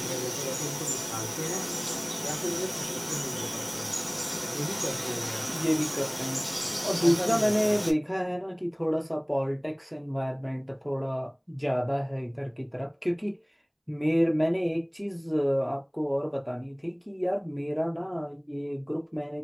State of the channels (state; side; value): identical; both; correlation 1.00